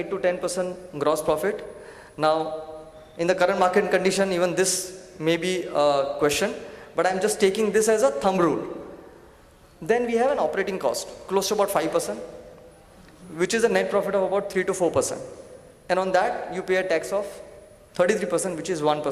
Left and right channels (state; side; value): identical; both; correlation 1.00